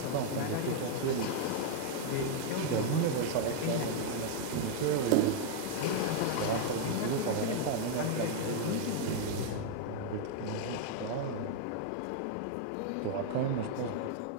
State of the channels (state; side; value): different; both; correlation 0.00